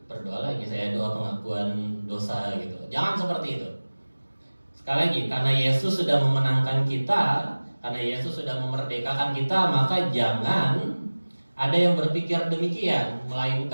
berdoa lagi, saya doa pengakuan dosa gitu. Jangan seperti itu. Sekali lagi, karena Yesus sudah memenangkan kita, karena Yesus sudah memerdekakan kita, maka jangan ada yang berpikir demikian,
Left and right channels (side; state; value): both; inverted; correlation -1.00